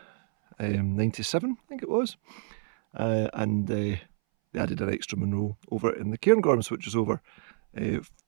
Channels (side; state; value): left; silent; 59 dB below the other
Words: 97, I think it was. And they added an extra Munro over in the Cairngorms, which is over